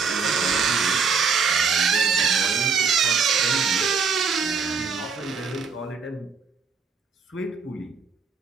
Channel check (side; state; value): left; quieter; 5.5 dB